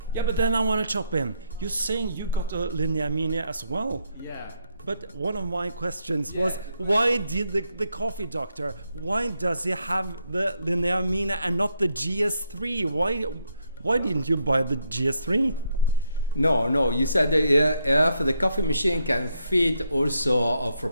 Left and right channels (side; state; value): both; inverted; correlation -0.77